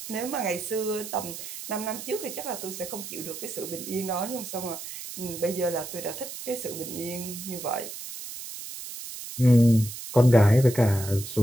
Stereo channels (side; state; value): right; noise; hiss, 10 dB below the sound